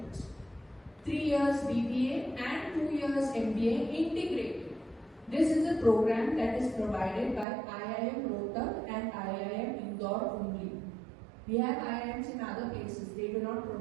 3 years BBA and 2 years MBA integrated. This is a program that is provided by IIM Rohtak and IIM Indore only. We have IIMs in other places, they do not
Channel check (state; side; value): drops out; left; at 7.5 s